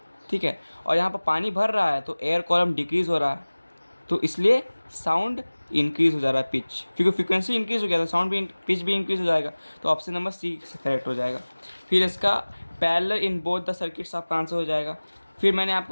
ठीक है। और यहाँ पर पानी भर रहा है तो एयर कॉलम डिक्रीज़ हो रहा है, तो इसलिए साउंड इंक्रीज़ हो जा रहा है, पिच, क्योंकि फ्रीक्वेंसी इंक्रीज़ हो गया तो साउंड भी पिच भी इंक्रीज़ हो जाएगा, तो ऑप्शन नंबर सी करेक्ट हो जाएगा। फिर इसका parallel in both the circuits आपका आंसर हो जाएगा। फिर मैंने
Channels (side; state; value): both; inverted; correlation -1.00